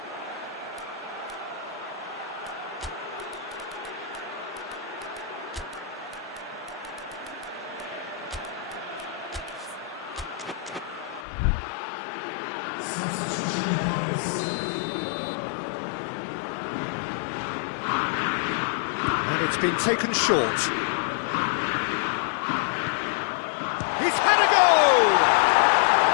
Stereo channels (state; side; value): drops out; right; at 11.2 s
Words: It's been taken short. He's had a go!